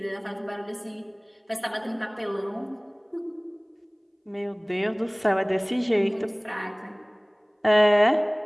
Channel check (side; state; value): both; identical; correlation 1.00